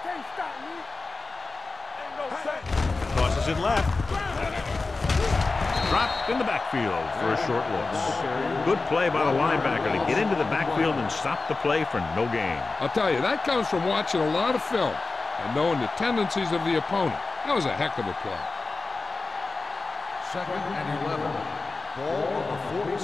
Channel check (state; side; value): quieter; right; 3.8 dB